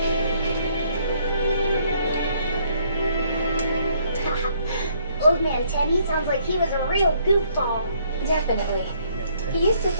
Old man Teddy sounds like he was a real goofball. Definitely. He used to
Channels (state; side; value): inverted; both; correlation -0.67